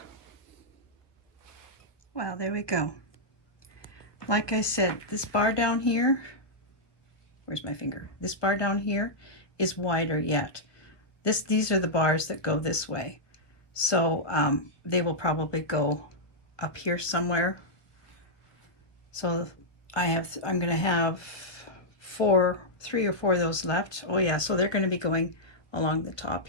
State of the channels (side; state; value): right; late; 1.2 ms